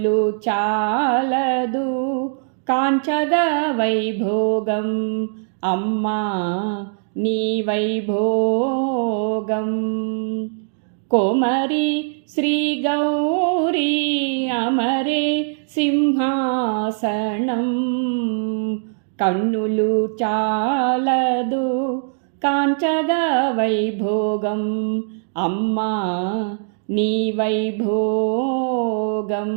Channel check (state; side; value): silent; left; 65 dB below the other